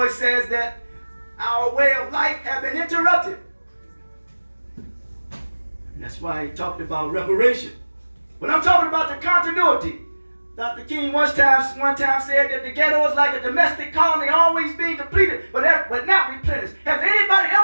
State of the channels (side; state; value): both; inverted; correlation -1.00